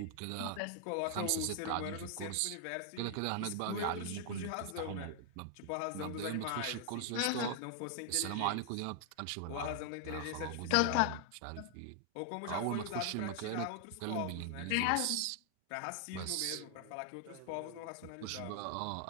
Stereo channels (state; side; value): different; both; correlation 0.00